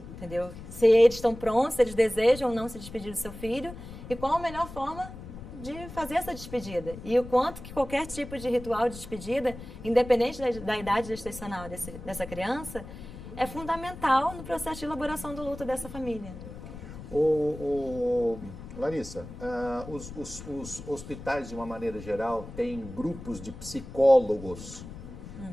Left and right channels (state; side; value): noise; left; rumble, 13 dB below the sound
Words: entendeu? Se eles estão prontos, se eles desejam ou não se despedir do seu filho e qual a melhor forma de fazer essa despedida. E o quanto que qualquer tipo de ritual de despedida, independente da idade gestacional dessa criança, é fundamental no processo de elaboração do luto dessa família. Larissa, os hospitais, de uma maneira geral, têm grupos de psicólogos